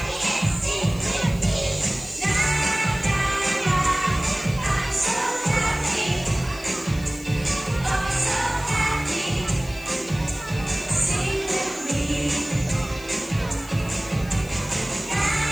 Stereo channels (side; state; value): left; noise; hiss, 19 dB below the sound